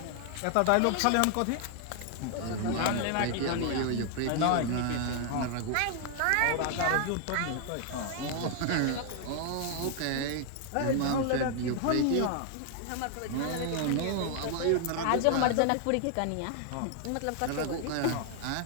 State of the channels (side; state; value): both; different; correlation 0.00